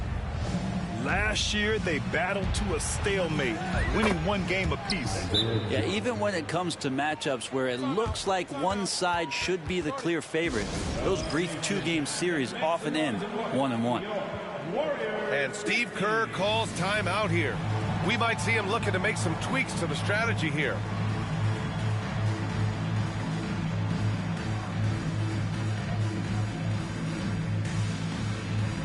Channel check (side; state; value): both; identical; correlation 1.00